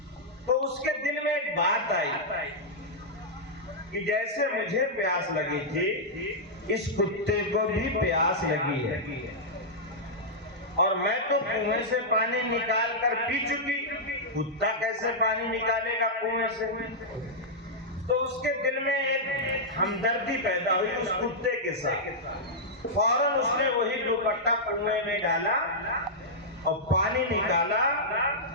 تو اس کے دل میں ایک بات آئی کہ جیسے مجھے پیاس لگی تھی اس کتے کو بھی پیاس لگی ہے، اور میں تو کنویں سے پانی نکال کر پی چکی، کتا کیسے پانی نکالے گا کنویں سے؟ تو اس کے دل میں ایک ہمدردی پیدا ہوئی اس کتے کے ساتھ. فوراً اس نے وہی دوپٹہ کنویں میں ڈالا اور پانی نکالا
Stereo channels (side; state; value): both; normal; correlation -0.09